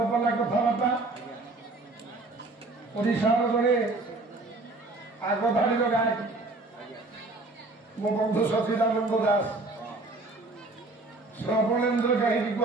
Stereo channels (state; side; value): quieter; left; 3.1 dB